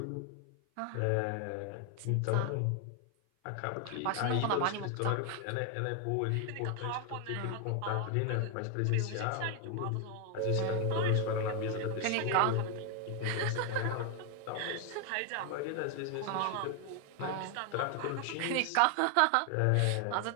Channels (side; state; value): both; different; correlation 0.01